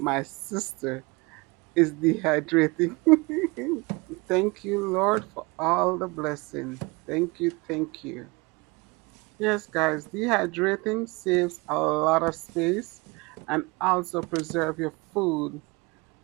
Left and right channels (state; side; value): quieter; left; 26.0 dB